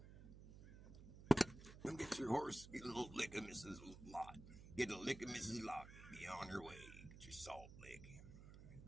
Come get your horse, get a little lick of Mrs. Lot. Get a lick of Mrs. Lot. Be on your way. Get your salt lick.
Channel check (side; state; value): right; noise; hum, 15 dB below the sound